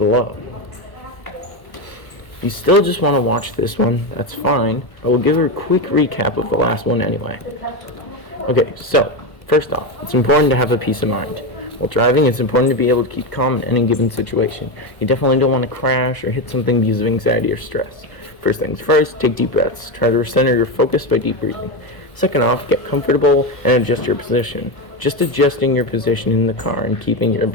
If you still just want to watch this one, that's fine. I will give a quick recap of the last one anyway. Okay, so, first off, it's important to have a peace of mind. While driving, it's important to be able to keep calm in any given situation. You definitely don't want to crash or hit something because of anxiety or stress. First things first, take deep breaths. Try to recenter your focus by deep breathing. Second off, get comfortable and adjust your position. Just adjusting your position in the car and keeping your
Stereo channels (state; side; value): late; right; 1.2 ms